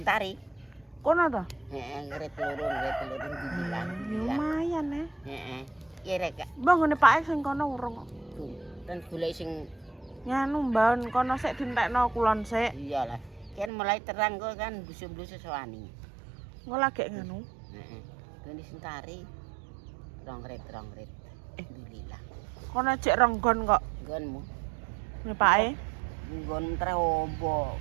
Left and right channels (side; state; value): left; drops out; at 13.7 s